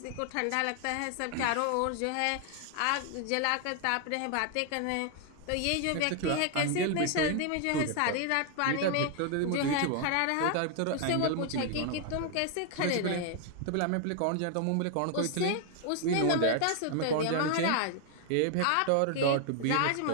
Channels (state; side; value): different; both; correlation 0.00